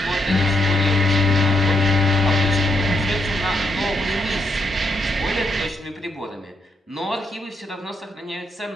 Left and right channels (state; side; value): normal; both; correlation 0.79